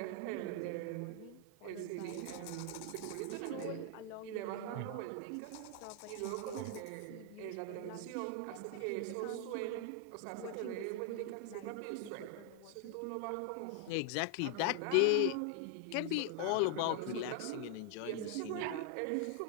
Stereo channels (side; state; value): both; different; correlation 0.00